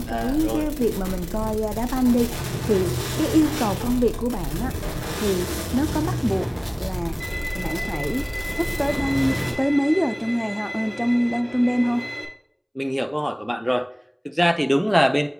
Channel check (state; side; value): identical; both; correlation 1.00